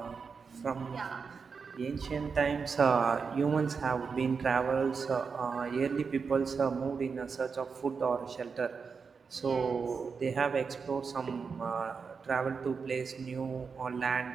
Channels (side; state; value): left; quieter; 5.4 dB